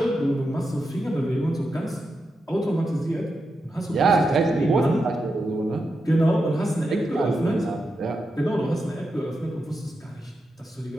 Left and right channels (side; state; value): both; normal; correlation 0.87